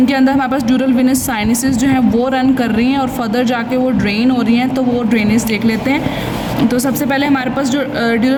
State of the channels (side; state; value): both; identical; correlation 1.00